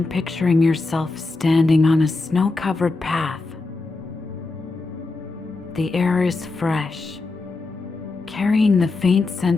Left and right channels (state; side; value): quieter; right; 3.5 dB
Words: picturing yourself standing on a snow-covered path. The air is fresh, carrying the faint